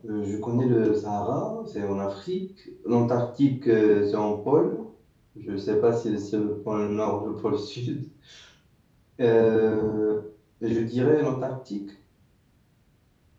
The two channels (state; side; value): identical; both; correlation 1.00